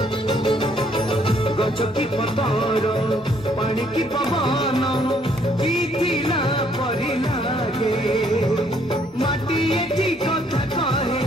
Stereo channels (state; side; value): normal; both; correlation 0.66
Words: गछ की पतर पानी की पवन बीतिला परी लागे माटी एठी कथा